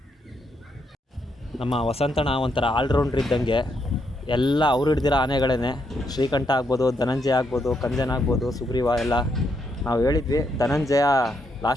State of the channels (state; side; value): normal; both; correlation 0.78